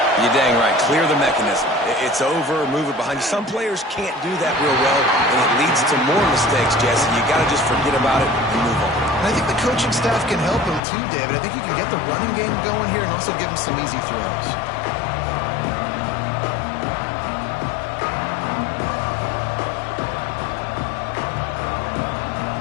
You're dang right. Clear the mechanism. It's over, move it behind you. Some players can't do that real well, and it leads to more mistakes, Jesse. You got to just forget about it and move on. And I think the coaching staff can help him too, David. I think you can get the running game going here and also give him some easy throws.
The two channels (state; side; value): drops out; right; at 10.8 s